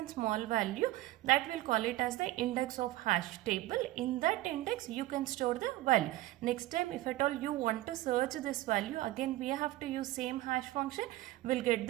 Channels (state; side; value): quieter; left; 16.7 dB